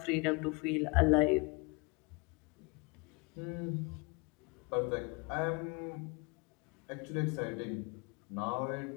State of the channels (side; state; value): right; quieter; 29.7 dB